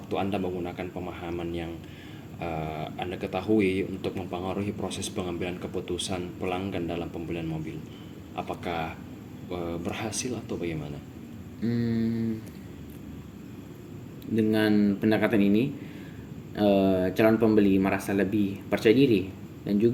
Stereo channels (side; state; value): both; identical; correlation 1.00